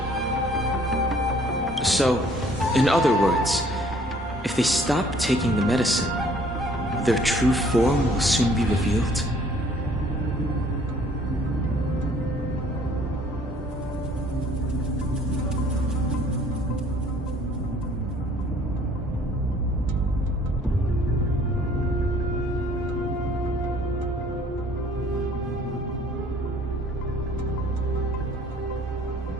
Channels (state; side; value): normal; both; correlation 0.57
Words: So, in other words, if they stop taking the medicine, their true form will soon be revealed?